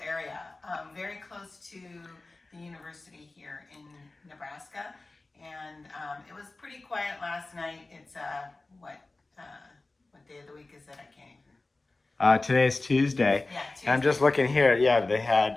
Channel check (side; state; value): right; quieter; 3.2 dB